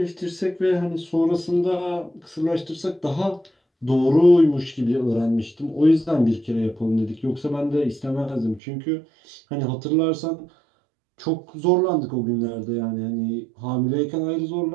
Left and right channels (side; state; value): left; drops out; at 8.6 s